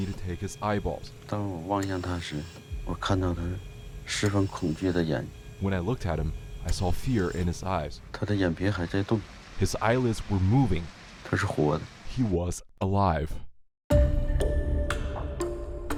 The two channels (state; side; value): identical; both; correlation 1.00